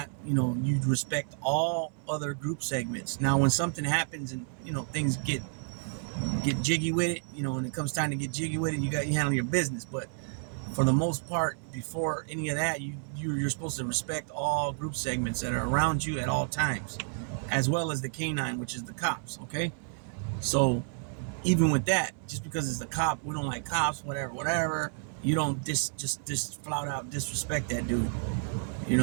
you respect all other group segments. Now, when something happens and, things get jiggy with it, and it comes time to get jiggy with it, you handle your business. But for the most part, before any of that, you're supposed to respect all group segments that are around you at all times, as well as the canine, which is the cops. Okay, so even with that, just because it's the cop, we don't like cops, whatever. You don't just flout out disrespect that dude. You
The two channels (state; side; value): silent; left; 57 dB below the other